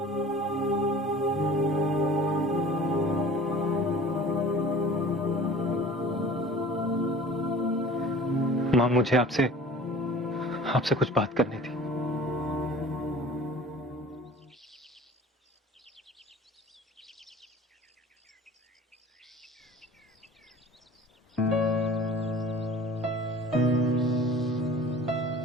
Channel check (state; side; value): normal; both; correlation 0.44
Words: मां, मुझे आपसे कुछ बात करनी थी।